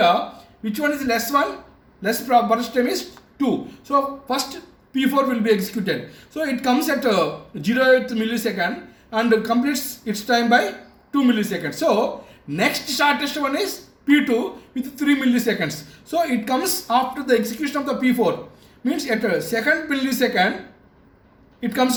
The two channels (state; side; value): identical; both; correlation 1.00